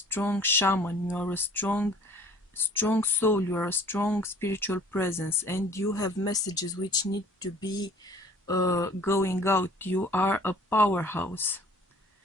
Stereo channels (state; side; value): normal; both; correlation 0.52